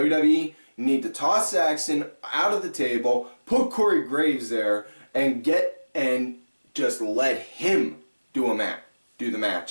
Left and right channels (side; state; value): both; inverted; correlation -1.00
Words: you need to toss Saxon out of the table, put Corey Graves there, and just let him do the